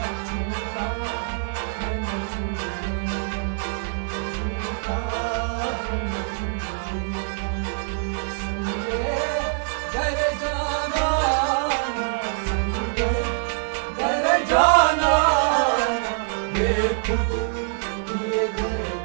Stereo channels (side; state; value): left; silent; 62 dB below the other